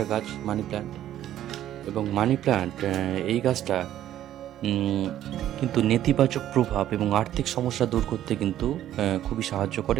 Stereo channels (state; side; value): quieter; left; 12.1 dB